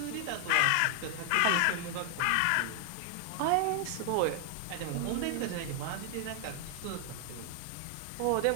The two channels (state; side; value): different; both; correlation 0.00